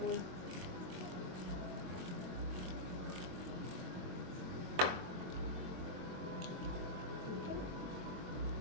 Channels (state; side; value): late; left; 22 ms